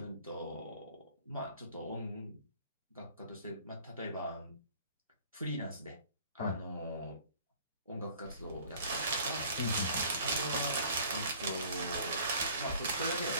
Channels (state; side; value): inverted; both; correlation -0.51